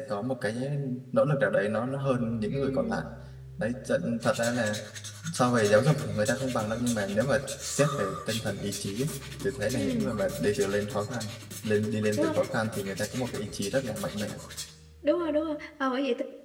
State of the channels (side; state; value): both; identical; correlation 1.00